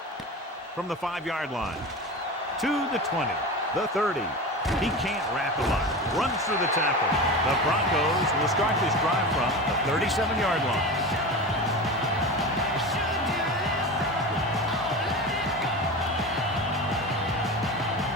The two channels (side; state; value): both; normal; correlation 0.28